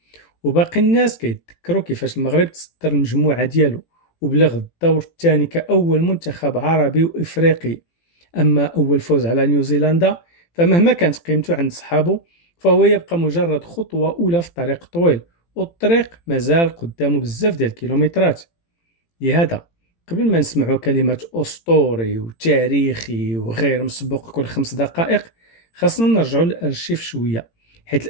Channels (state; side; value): late; right; 18 ms